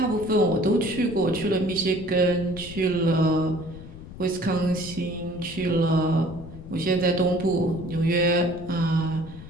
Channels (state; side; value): noise; left; rumble, 15 dB below the sound